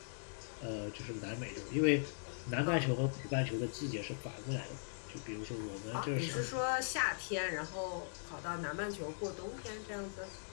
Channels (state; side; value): silent; right; digital silence